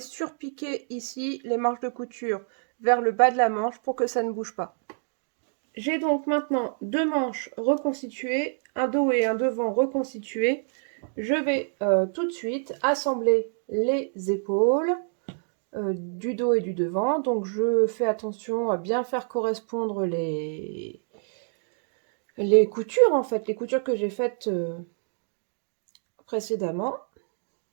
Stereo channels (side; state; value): left; silent; 59 dB below the other